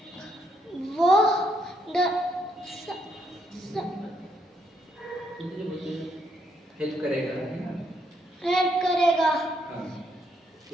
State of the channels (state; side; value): normal; both; correlation 0.75